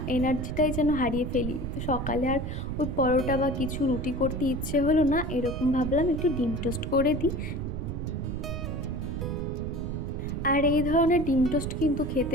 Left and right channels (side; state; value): right; noise; rumble, 5 dB below the sound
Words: এনার্জিটাই যেন হারিয়ে ফেলি। তো সকালে আর ওই পরোটা বা কিছু রুটি করতে ইচ্ছে হলো না, এরকম ভাবলাম একটু ডিম টোস্ট করে দিই। আর এই ধরনের ডিম টোস্ট কিন্তু খেতে